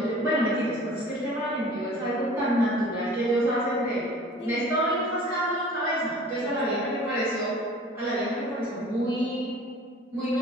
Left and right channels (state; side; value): normal; both; correlation 0.45